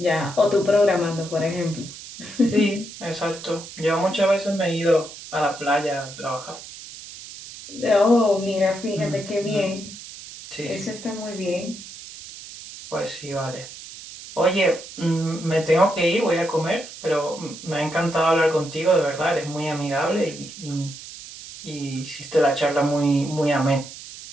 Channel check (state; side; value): noise; right; hiss, 14 dB below the sound